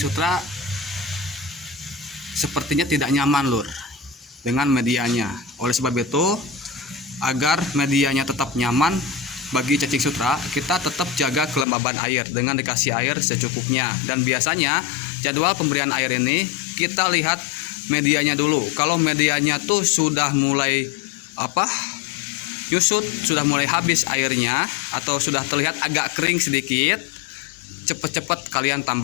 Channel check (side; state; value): right; drops out; at 11.7 s